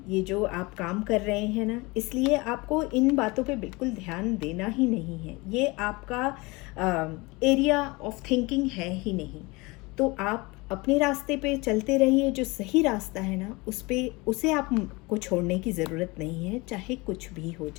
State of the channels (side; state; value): right; quieter; 24.4 dB